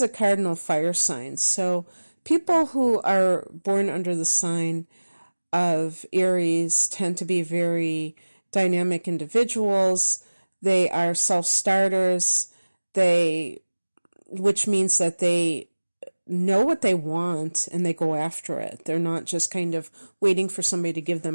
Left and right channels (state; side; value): inverted; both; correlation -1.00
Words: a cardinal fire sign, so people who are born under the sign of Aries tend to be very dynamic individuals. They are self-starters, which means that they know what they want and they go after it. They're not just kind of waiting for somebody to give